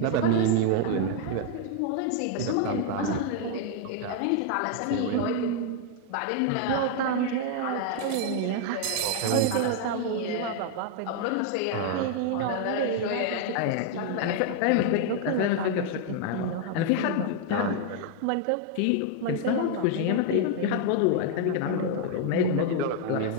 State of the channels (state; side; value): different; both; correlation 0.00